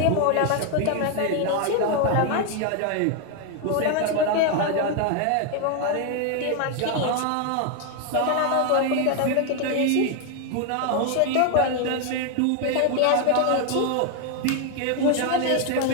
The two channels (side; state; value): both; different; correlation 0.01